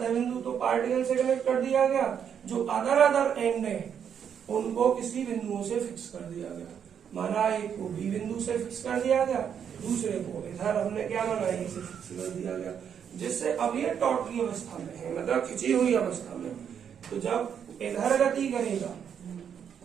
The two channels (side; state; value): left; quieter; 8.0 dB